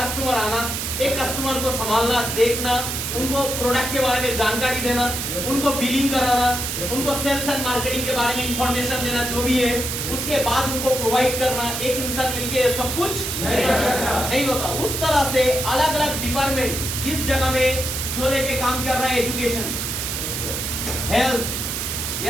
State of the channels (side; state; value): right; noise; hiss, 3 dB below the sound